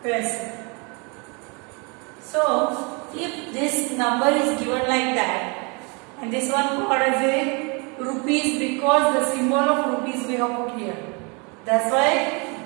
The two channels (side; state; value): left; quieter; 31.6 dB